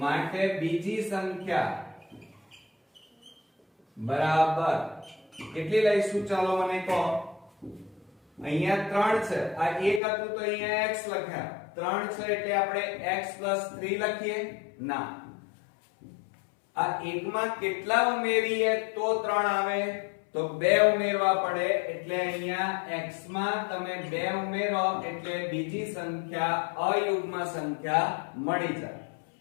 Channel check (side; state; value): right; drops out; at 10.0 s